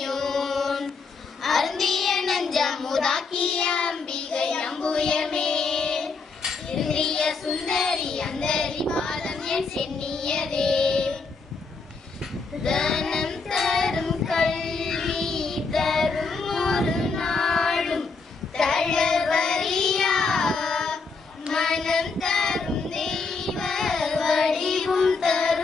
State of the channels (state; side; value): quieter; right; 4.5 dB